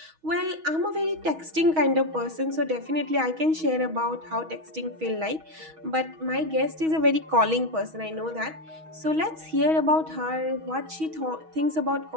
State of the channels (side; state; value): left; late; 6.3 ms